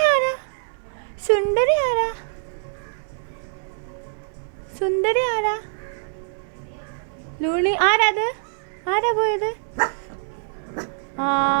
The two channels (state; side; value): silent; left; 60 dB below the other